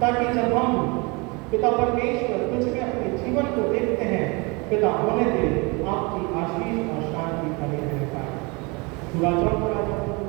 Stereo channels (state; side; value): quieter; left; 28.2 dB